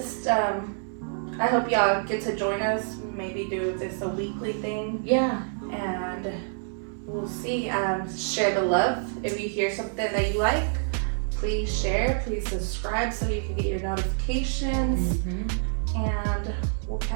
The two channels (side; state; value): left; silent; 60 dB below the other